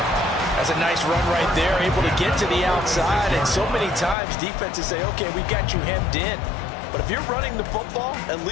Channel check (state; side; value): drops out; right; at 4.2 s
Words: That's a nice run right there, able to get to the outside. And so many times defenses say, okay, we got you hemmed in. But if you're running the football, at